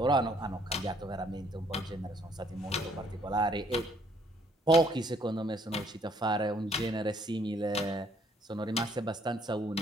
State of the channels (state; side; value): normal; both; correlation 0.65